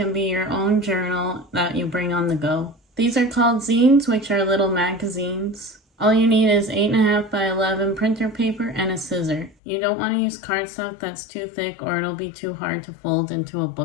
be your own journal that you bring on the go. These are called zines, which are little magazines. All you need is 8.5 by 11 printer paper and a scissor. You don't want to use cardstock that's too thick or it'll be too hard to fold into a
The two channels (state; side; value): drops out; right; at 9.6 s